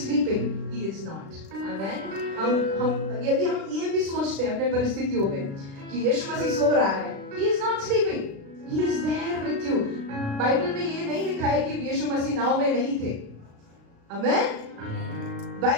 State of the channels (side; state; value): left; late; 36 ms